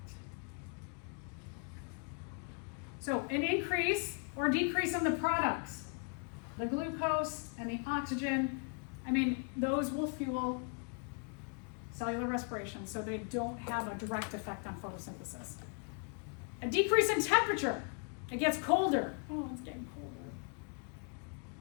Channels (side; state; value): right; quieter; 37.6 dB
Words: So an increase or decrease in the products, the glucose and the oxygen, those will fuel cellular respiration, so they don't have a direct effect on photosynthesis. A decrease in temperature, it gets colder. Oh, it's getting colder.